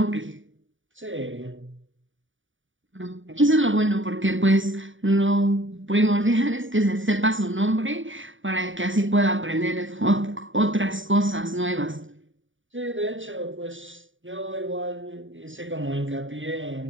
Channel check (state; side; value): late; left; 0.57 ms